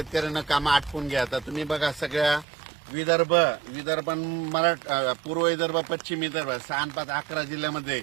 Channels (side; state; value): left; drops out; at 2.5 s